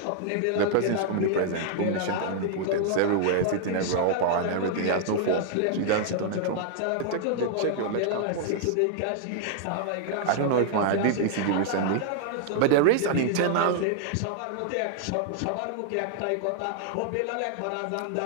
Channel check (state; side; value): different; both; correlation -0.01